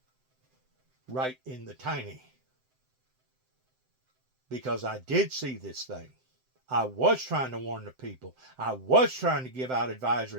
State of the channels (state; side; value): late; left; 7.7 ms